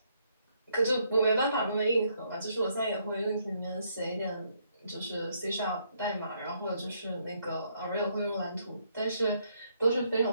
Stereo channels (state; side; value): inverted; both; correlation -0.72